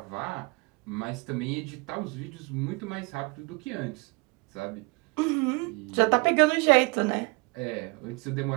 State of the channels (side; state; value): left; quieter; 27.5 dB